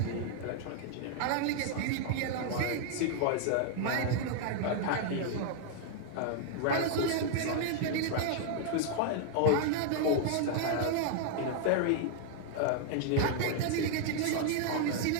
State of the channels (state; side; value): different; both; correlation 0.00